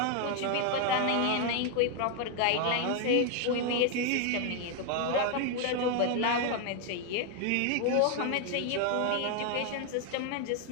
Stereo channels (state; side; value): different; both; correlation 0.01